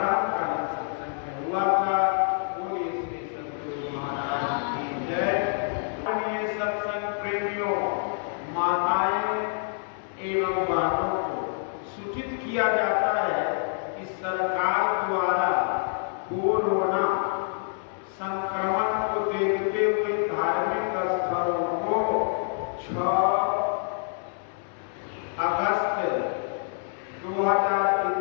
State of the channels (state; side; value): silent; right; 60 dB below the other